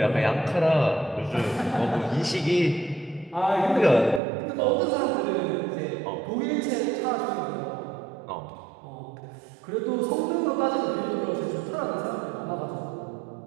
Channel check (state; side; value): drops out; left; at 4.2 s